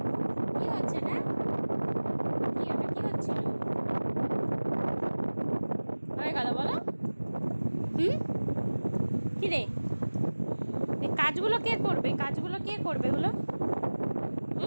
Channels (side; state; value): both; inverted; correlation -1.00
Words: কি হচ্ছে না? কি এটা কি হচ্ছিল? হয়ে গেল বলো। কি রে, এই কাজগুলো কে করবে? কাজগুলো কে করবে হলো?